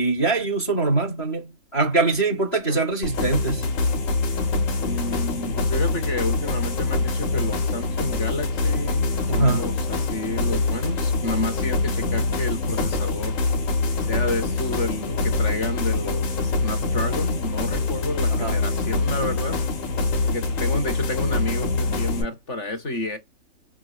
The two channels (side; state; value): right; late; 3.8 ms